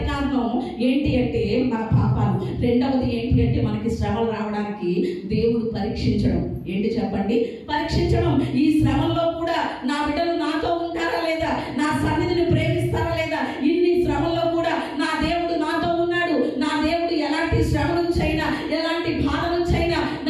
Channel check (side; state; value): both; identical; correlation 1.00